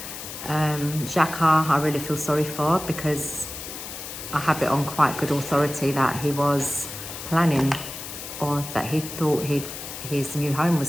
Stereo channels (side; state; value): left; noise; hiss, 9 dB below the sound